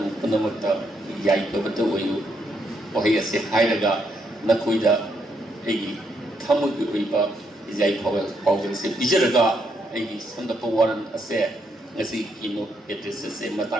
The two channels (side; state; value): both; normal; correlation 0.76